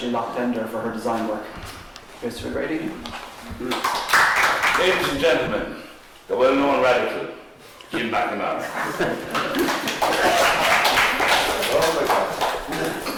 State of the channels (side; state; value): both; identical; correlation 1.00